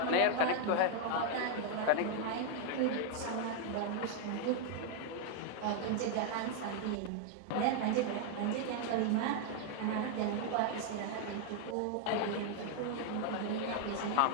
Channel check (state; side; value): different; both; correlation 0.00